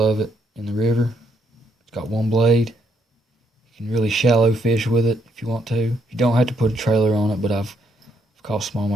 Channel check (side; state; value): both; normal; correlation 0.73